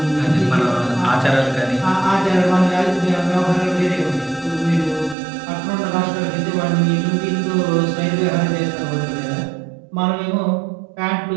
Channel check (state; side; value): drops out; left; at 5.2 s